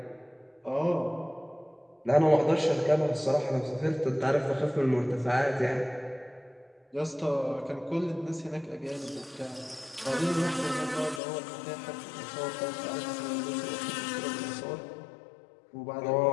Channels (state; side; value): drops out; right; at 11.2 s